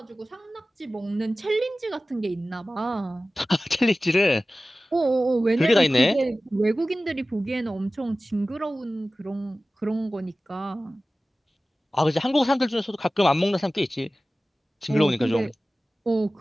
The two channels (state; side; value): normal; both; correlation 0.96